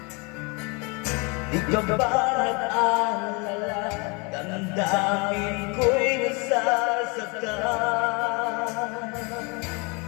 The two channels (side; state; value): right; quieter; 30.5 dB